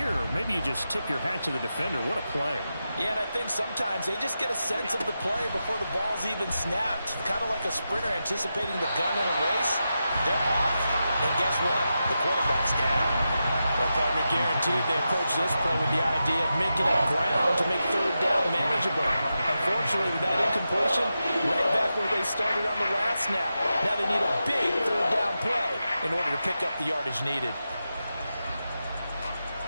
maybe you just tip your hat to the defender. What a play. Yeah, and I think sometimes they just get a sense of the play before the ball's even snapped. Kind of like a sprinter anticipating the gun in a race. They're off, and guess what? The quarterback's down. Well, partner, guaranteed they approach this play with the idea of making up ground to make third down manageable. Unfortunately, with that incompletion, right back where they started on the last snap. Now they need a big third down play in order to pick up the yardage needed.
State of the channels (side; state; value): both; inverted; correlation -0.89